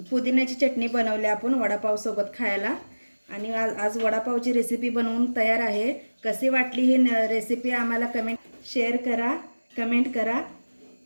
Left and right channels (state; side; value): inverted; both; correlation -1.00